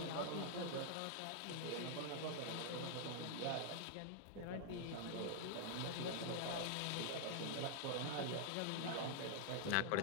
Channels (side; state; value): both; different; correlation 0.00